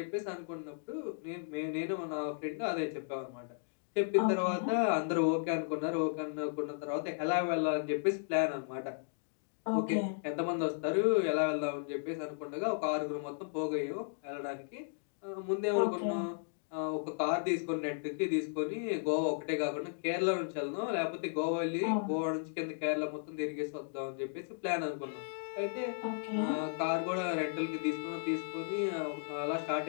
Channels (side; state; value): right; silent; digital silence